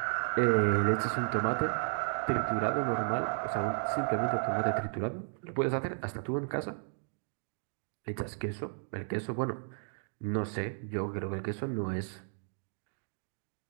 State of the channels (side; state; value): left; silent; 55 dB below the other